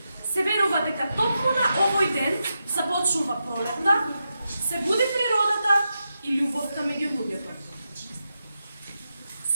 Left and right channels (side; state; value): both; inverted; correlation -0.88